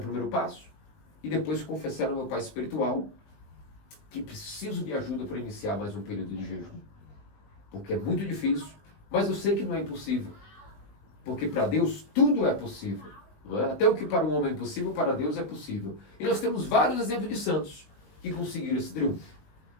passo. E depois confessar ao meu pai espiritual que preciso de ajuda para iniciar mais um período de jejum. Porque é muito difícil, mas eu sei que não é impossível. Porque para Deus tudo é possível. Não é? Até o que para o homem é impossível, para Deus é possível. E nós temos vários exemplos de santos que conseguiram esse triunfo.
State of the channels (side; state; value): right; late; 19 ms